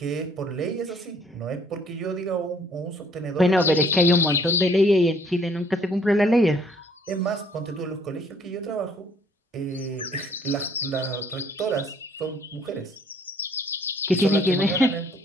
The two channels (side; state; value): both; normal; correlation 0.61